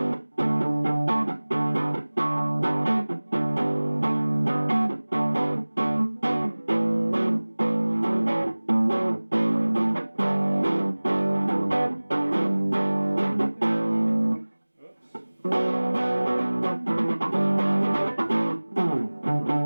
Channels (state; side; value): inverted; both; correlation -1.00